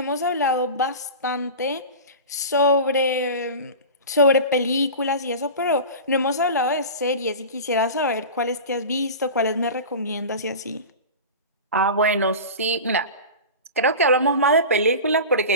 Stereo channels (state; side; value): inverted; both; correlation -0.31